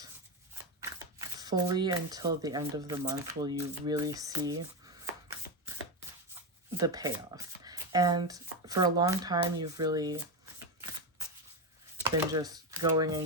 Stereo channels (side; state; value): both; normal; correlation 0.13